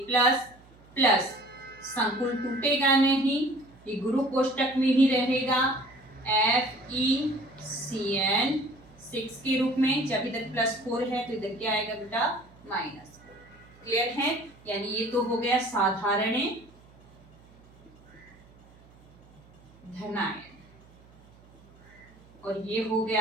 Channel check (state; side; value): noise; right; hum, 26 dB below the sound